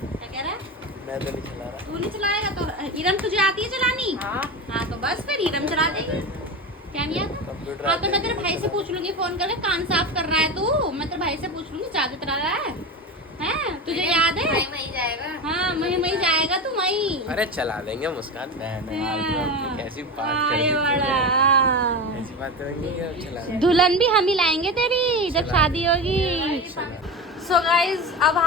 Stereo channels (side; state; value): both; normal; correlation 0.24